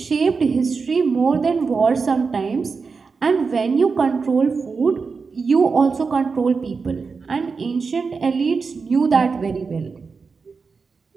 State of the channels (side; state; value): left; quieter; 4.9 dB